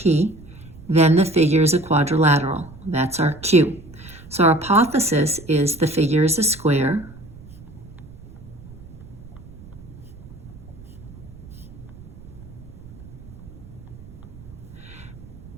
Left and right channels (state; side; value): noise; right; rumble, 18 dB below the sound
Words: then the figure is a quadrilateral, that's our Q. So our hypothesis is the figure is a square,